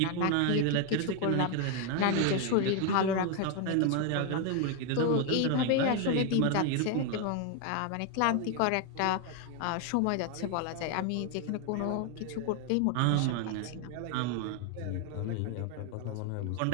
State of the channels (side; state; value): both; different; correlation 0.01